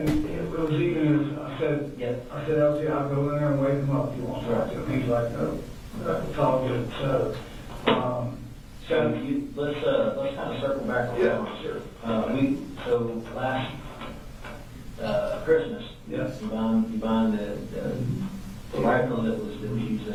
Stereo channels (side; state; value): both; identical; correlation 1.00